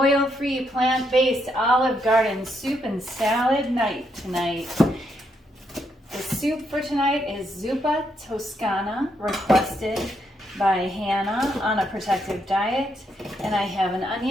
plant-based Olive Garden soup and salad night tonight. The soup for tonight is Zuppa Toscana, requested by Hannah on a protective diet. And I have an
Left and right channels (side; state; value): both; normal; correlation 0.77